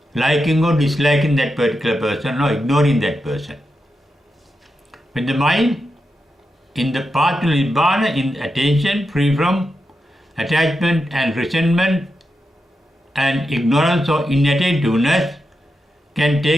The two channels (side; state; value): both; normal; correlation 0.88